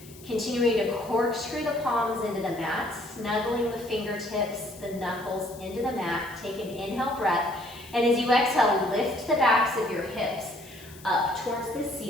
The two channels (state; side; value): noise; left; hiss, 20 dB below the sound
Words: continuing to corkscrew the palms into the mat, snuggling the fingertips, the knuckles into the mat. Take an inhale breath, and as you exhale, lift the backs of your hips up towards the